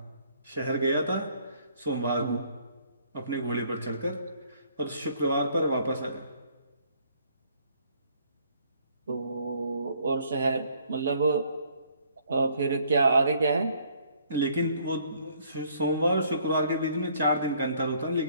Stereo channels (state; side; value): inverted; both; correlation -0.63